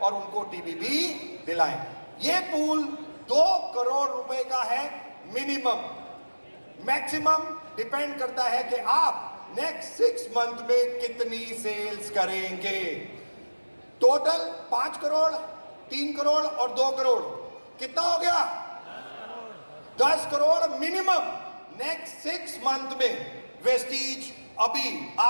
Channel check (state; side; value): inverted; both; correlation -1.00